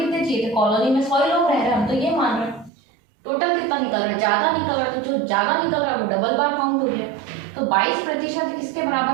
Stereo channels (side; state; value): left; drops out; at 2.7 s